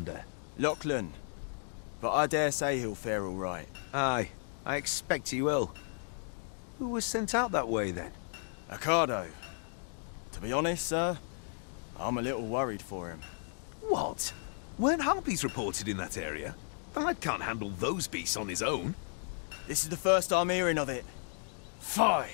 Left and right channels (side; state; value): right; silent; 55 dB below the other